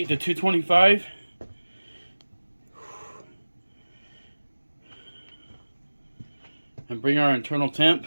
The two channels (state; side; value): inverted; both; correlation -1.00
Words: to 225. And bring our internal temp